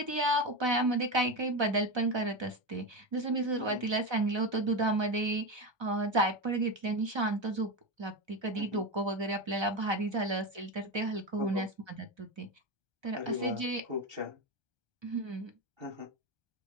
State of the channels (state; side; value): late; left; 1.3 ms